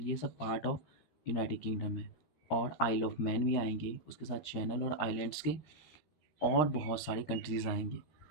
सब पार्ट ऑफ यूनाइटेड किंगडम है। और आइल ऑफ मैन भी आएंगे, उसके साथ चैनल और आइलैंड्स के और बहुत सारी कंट्रीज़ आएंगे।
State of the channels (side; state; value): right; late; 13 ms